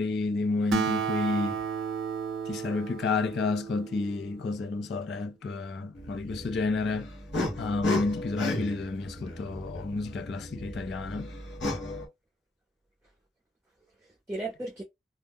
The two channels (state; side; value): normal; both; correlation 0.65